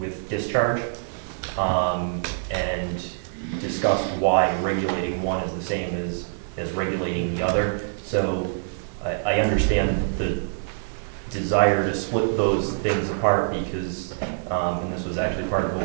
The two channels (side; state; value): left; silent; digital silence